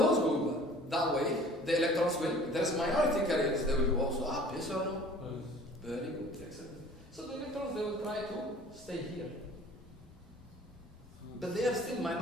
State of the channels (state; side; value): normal; both; correlation 0.48